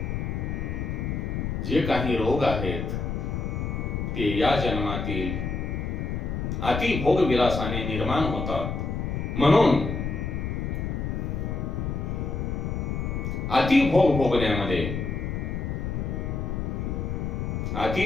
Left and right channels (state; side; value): noise; left; rumble, 2 dB below the sound